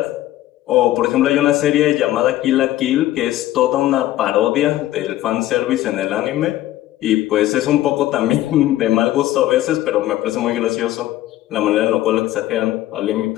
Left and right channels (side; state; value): right; quieter; 14.8 dB